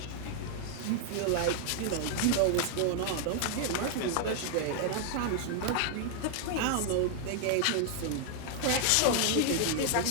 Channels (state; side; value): different; both; correlation 0.00